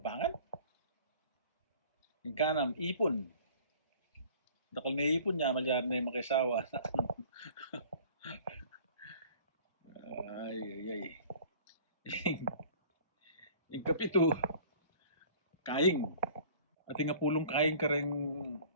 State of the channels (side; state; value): both; inverted; correlation -0.49